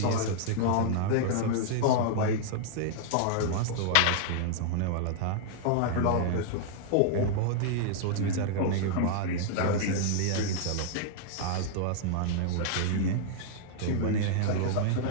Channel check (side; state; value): both; different; correlation -0.01